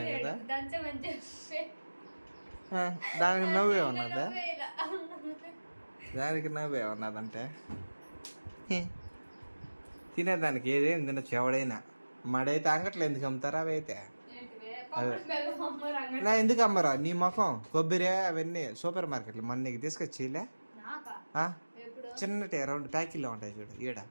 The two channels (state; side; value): inverted; both; correlation -1.00